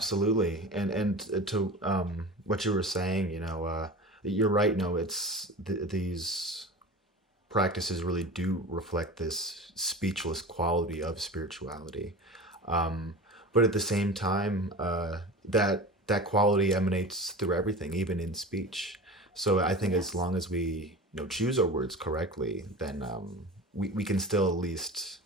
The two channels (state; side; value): normal; both; correlation 0.33